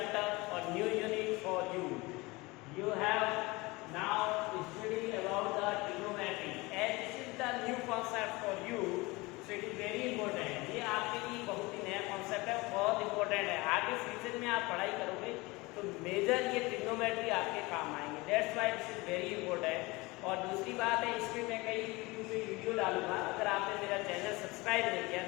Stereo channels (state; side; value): quieter; right; 23.3 dB